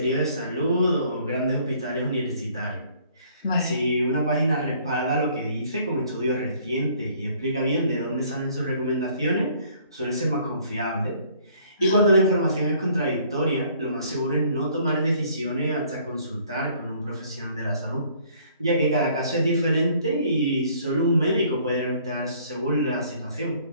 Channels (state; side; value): inverted; both; correlation -0.59